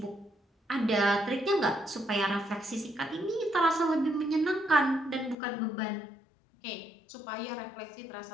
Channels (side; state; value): right; drops out; at 5.4 s